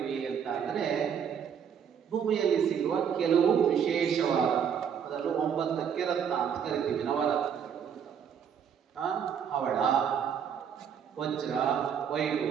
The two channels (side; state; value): left; quieter; 7.8 dB